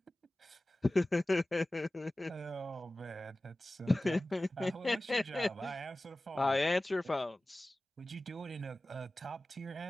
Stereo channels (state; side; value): normal; both; correlation 0.97